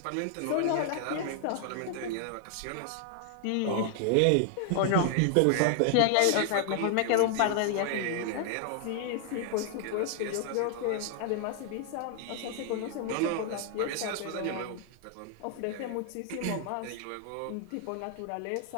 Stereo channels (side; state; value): both; different; correlation 0.00